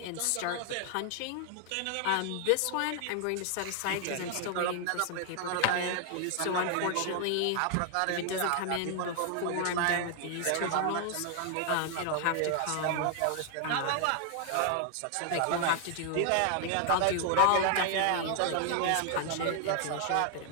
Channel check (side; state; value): both; different; correlation 0.00